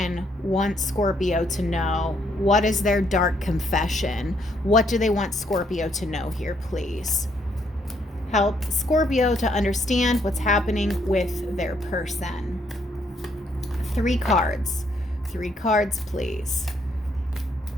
want Scorpio to know? What is their dark confession? What do they want Scorpio to know here, please? Help Scorpio to understand what's happening with their person. 3 cards. 3 cards, please.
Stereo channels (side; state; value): both; normal; correlation 0.71